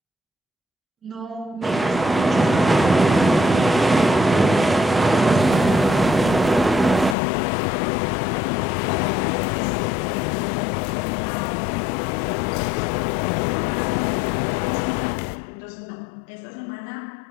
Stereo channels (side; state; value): right; drops out; at 7.2 s